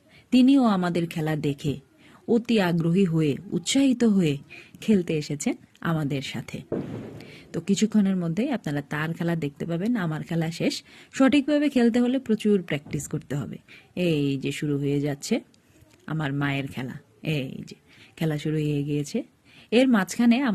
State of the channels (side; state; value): both; identical; correlation 1.00